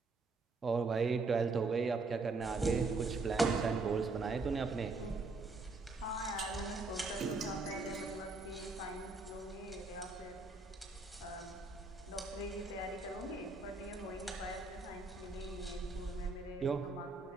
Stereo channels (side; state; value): left; quieter; 3.7 dB